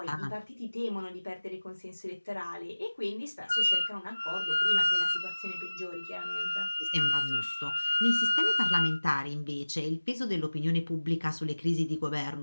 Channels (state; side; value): inverted; both; correlation -1.00